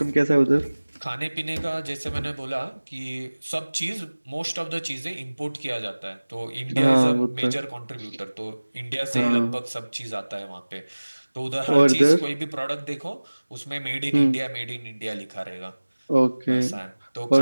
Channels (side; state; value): both; inverted; correlation -1.00